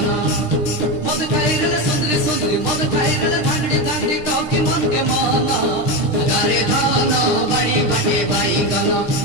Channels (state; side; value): late; right; 6.5 ms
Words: मद खाइरले सुंदरी सुंदरी मद खाइरले धांगड़ी धांगड़ी टोकी मन के मन जगारे धन बाड़ी बाटे बाईगन